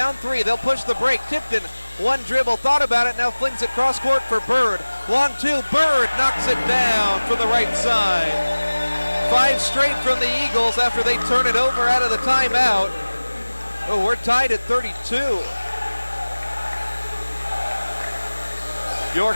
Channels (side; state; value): both; inverted; correlation -1.00